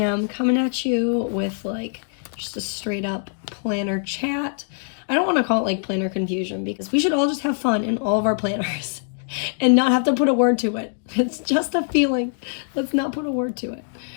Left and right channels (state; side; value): silent; right; digital silence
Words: coming at you with like just a straight up planner chat. I don't want to call it like planner confusion because we should all just have fun in all of our planners and not have to put a word to it. It's just a feeling. Let's not put a word to it.